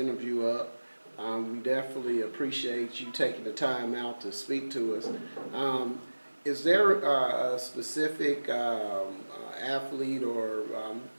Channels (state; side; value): inverted; both; correlation -1.00